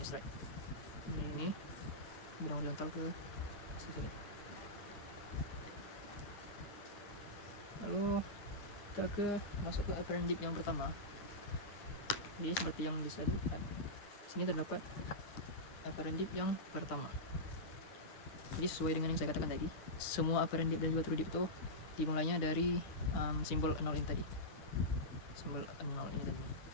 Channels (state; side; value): late; right; 10 ms